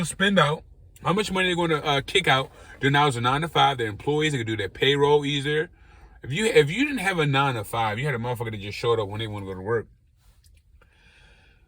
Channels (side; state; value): both; identical; correlation 1.00